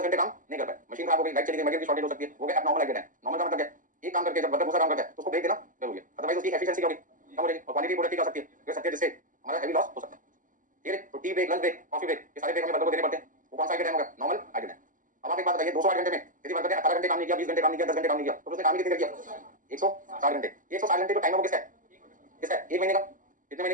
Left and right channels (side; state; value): left; late; 0.38 ms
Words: घंटे काम नहीं कर पाए, मशीन खराब हो गई, लाइट चली गई, मटेरियल की शॉर्टेज हो सकती है, वो गया नॉर्मल आइडियल टाइम। नॉर्मल का मतलब क्या? एक काम करके जब वर्कर दूसरा काम करता है तो उसको ब्रेक देना जरूरी है, अदरवाइज उसकी एफिशिएंसी क्या होगी? कम हो जाएगी और क्वालिटी प्रोडक्ट की क्या हो सकती है? गिर सकती है, जिससे हमारा हेवी लॉस हो सकता है, ठीक है? तो tea break, lunch break, coffee break, ये सारे ब्रेक हमें वर्कर को देने पड़ते हैं। वो कौन सा आइडियल टाइम होगा? Normal ideal time. अब आप एक बात बताइए 208 घंटे में यदि वर्कर ने 18 घंटे काम नहीं किया, 20 घंटे काम नहीं किया, 10 घंटे काम नहीं किया, तो उसने काम ही कितनी देर किया? 160 घंटे। 160 घंटे जो टाइम है वो किसका है? किसका है? एक महीने का। कितने महीने